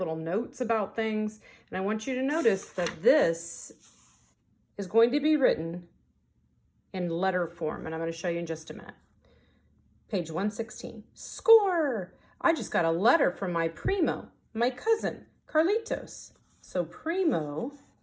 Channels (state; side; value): identical; both; correlation 1.00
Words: notes about things. And I want you to notice that this is going to be written in letter form, and I'm going to show you in just a minute. Page 116. Score! I just got a letter from my Primo, my cousin, Carlitos. So Primo